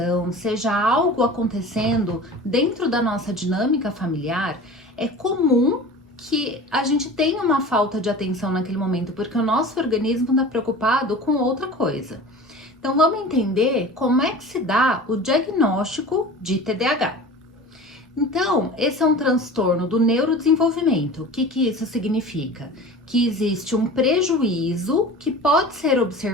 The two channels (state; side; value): normal; both; correlation 0.38